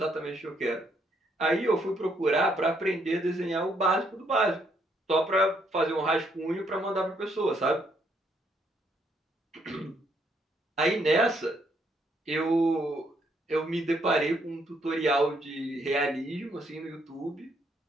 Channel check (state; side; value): normal; both; correlation 0.72